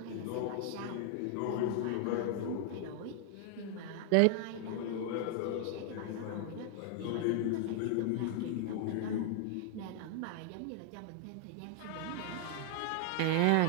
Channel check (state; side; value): different; both; correlation 0.00